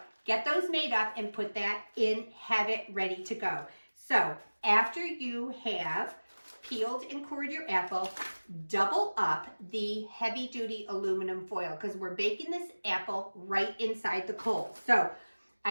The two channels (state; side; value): inverted; both; correlation -1.00